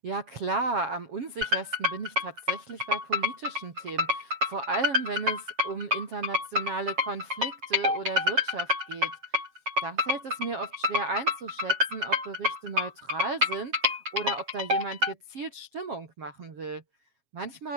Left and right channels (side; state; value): left; late; 7.4 ms